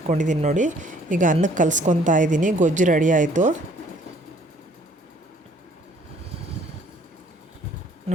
ನೋಡಿ, ಈಗ ಅನ್ನಕ್ಕೆ ಕಲಿಸ್ಕೊತಾ ಇದ್ದೀನಿ. ಗೊಜ್ಜು ರೆಡಿ ಆಯಿತು.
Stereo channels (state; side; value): normal; both; correlation 0.60